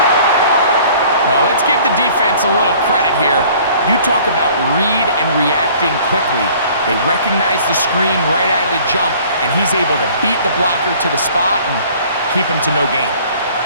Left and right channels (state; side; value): inverted; both; correlation -0.52